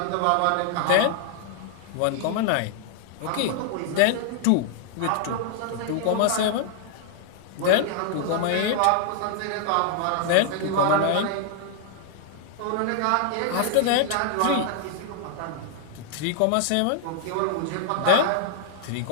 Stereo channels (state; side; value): different; both; correlation -0.01